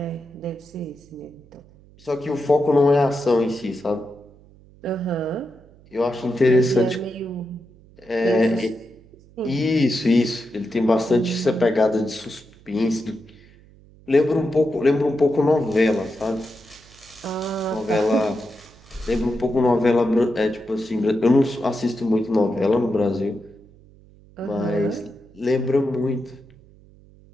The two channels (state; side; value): noise; right; hum, 26 dB below the sound